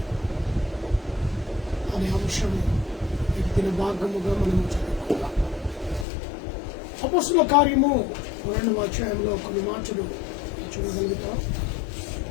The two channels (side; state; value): right; drops out; at 6.1 s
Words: అనే అంశము ఈ దిన భాగముగా మనము చదువుకుందాం. అపొస్తలుల కార్యము 2వ అధ్యాయంలో కొన్ని మాటలు చూడగలుగుతాం.